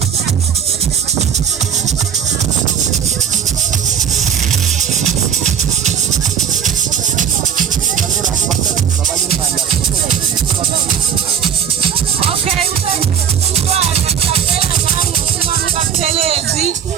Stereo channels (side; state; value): left; quieter; 8.2 dB